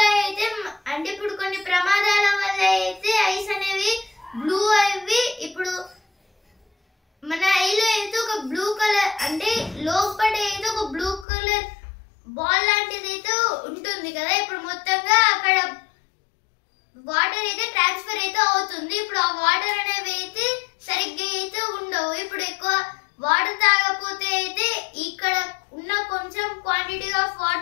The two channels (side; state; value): right; drops out; at 11.2 s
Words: అయితే అంటే ఇప్పుడు కొన్ని ప్రమాదాల వల్ల అయితే ఐస్ అనేవి బ్లూ అవి ఇప్పుడు మన ఐలో అయితే ఒక బ్లూ కలర్ అంటే లోపల అయితే ఒక బ్లూ కలర్ బాల్ లాంటిది అయితే ఉంటుంది కదా. ఇప్పుడు మొత్తంగా అక్కడ వాటర్ అయితే ట్రాన్స్ఫర్ అయితే అవుతుంది. ఇప్పుడు ఆ వాటర్ అనేవి అయితే సరిగ్గా అయితే ఉండవు. ఇప్పుడు ఎక్కువ వాటర్ తాగకపోతే అయితే ఇక్కడ ఉన్న కొంచెం క్వాంటిటీ ఆఫ్